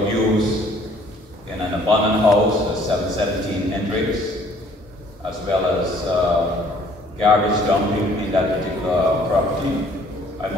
use in an abandoned house at 717 Hendricks, as well as garbage dumping in that particular property. I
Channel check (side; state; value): both; normal; correlation 0.58